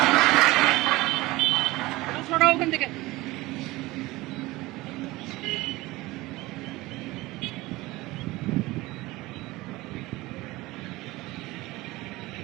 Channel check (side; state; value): left; quieter; 19.9 dB